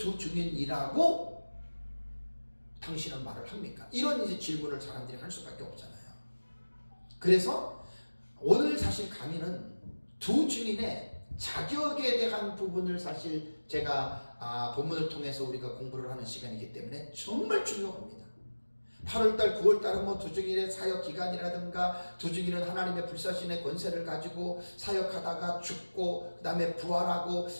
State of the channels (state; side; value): inverted; both; correlation -1.00